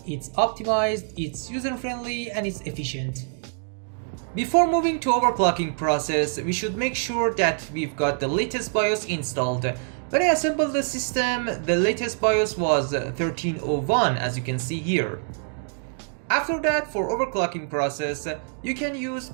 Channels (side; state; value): left; silent; 62 dB below the other